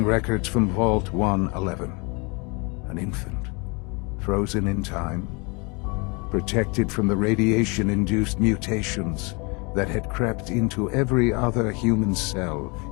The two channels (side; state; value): right; quieter; 30.3 dB